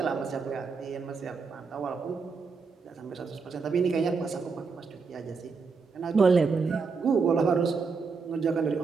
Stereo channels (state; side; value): quieter; left; 4.9 dB